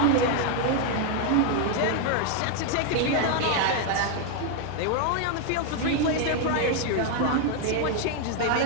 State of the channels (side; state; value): both; different; correlation 0.01